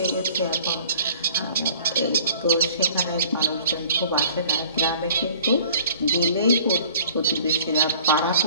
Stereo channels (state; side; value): inverted; both; correlation -0.49